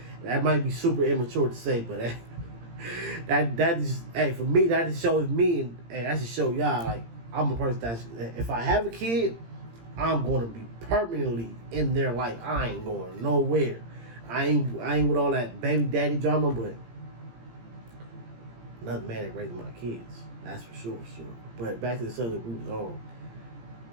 That might be super immature to say, but that is, hey, for me, that just shows me, and that just show y'all, like, I'm a person that's, if I have a kid, I'm going to be permanently in their life. I ain't going nowhere. I ain't with all that baby daddy drama, but another man that raising my kids. That's for sure. But back to the subject we was on.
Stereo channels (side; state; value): left; late; 17 ms